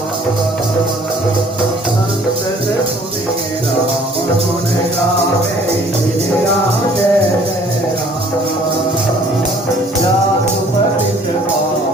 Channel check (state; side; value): normal; both; correlation 0.56